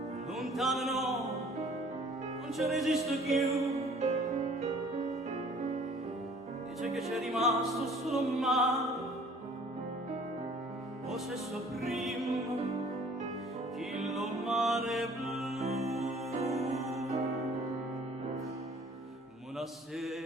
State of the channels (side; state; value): both; normal; correlation 0.53